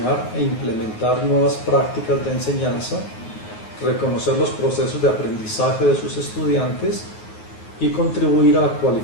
e implementar nuevas prácticas de enseñanza, reconocer los procesos de aprendizaje de sus estudiantes y contribuir a la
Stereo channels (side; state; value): right; late; 9.5 ms